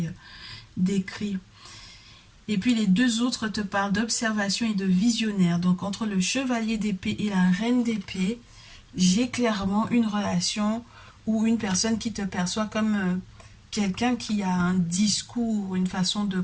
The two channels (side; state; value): both; identical; correlation 1.00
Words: décrit. Et puis les deux autres te parlent d'observation et de visionnaire. Donc entre le chevalier d'épée et la reine d'épée, j'ai clairement une relation ou une personne qui te perçoit comme quelqu'un qui a un discours, une façon de